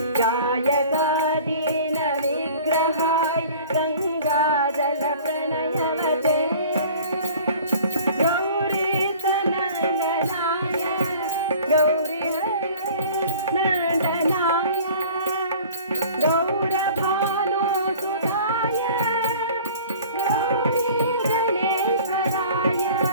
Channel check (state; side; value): inverted; both; correlation -0.46